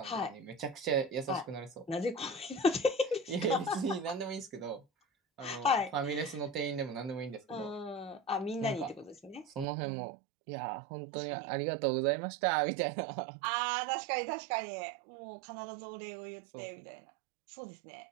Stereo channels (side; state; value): left; drops out; at 9.7 s